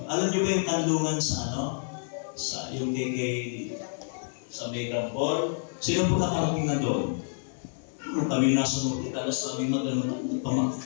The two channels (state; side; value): silent; right; 59 dB below the other